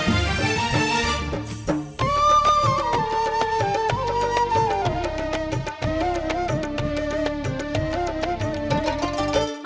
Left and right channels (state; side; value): identical; both; correlation 1.00